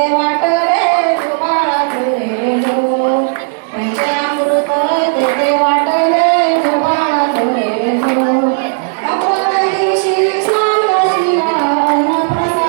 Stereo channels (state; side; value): silent; left; 65 dB below the other